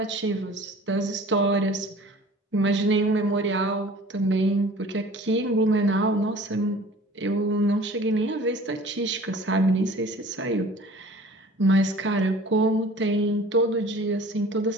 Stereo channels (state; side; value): normal; both; correlation 0.46